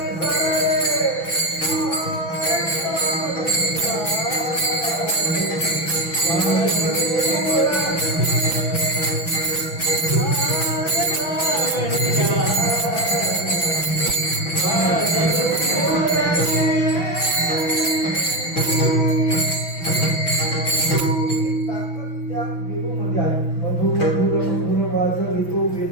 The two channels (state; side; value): late; right; 5.9 ms